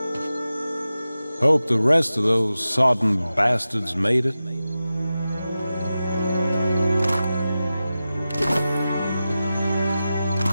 Hope the rest of those sodden bastards made it.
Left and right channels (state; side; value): inverted; both; correlation -0.93